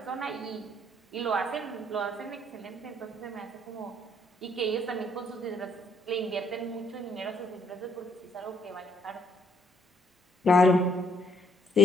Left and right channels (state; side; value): normal; both; correlation 0.66